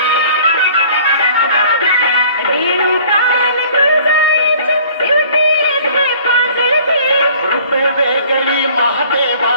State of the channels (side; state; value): both; inverted; correlation -0.52